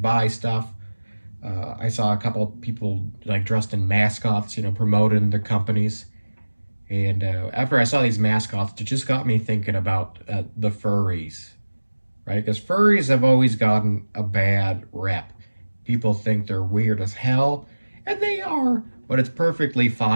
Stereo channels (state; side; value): inverted; both; correlation -1.00